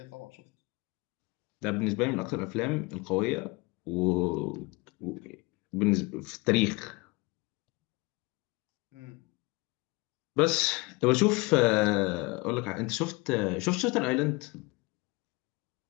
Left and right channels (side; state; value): right; quieter; 25.2 dB